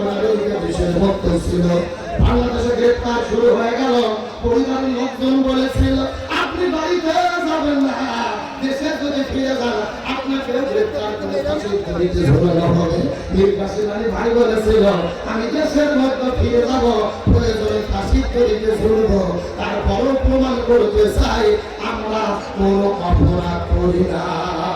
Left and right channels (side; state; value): both; identical; correlation 1.00